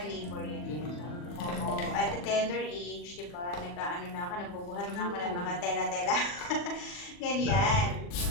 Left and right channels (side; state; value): right; late; 40 ms